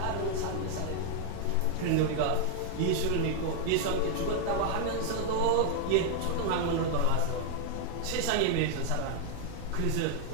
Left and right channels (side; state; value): both; different; correlation 0.00